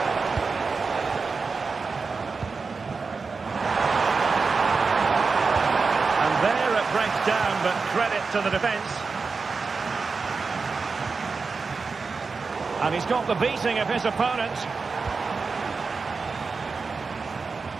Breaks down, but credit to the defence. And he's got the beating of his opponent.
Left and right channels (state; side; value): quieter; left; 4.6 dB